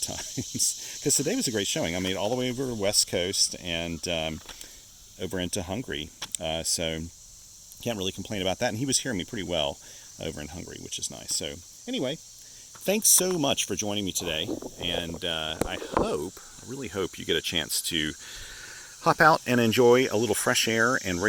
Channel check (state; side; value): identical; both; correlation 1.00